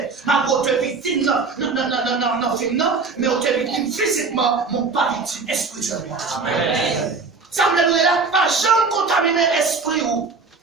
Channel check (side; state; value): left; quieter; 4.4 dB